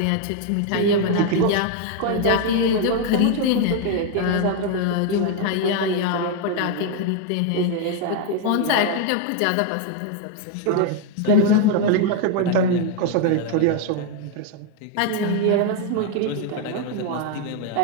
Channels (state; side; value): different; both; correlation 0.01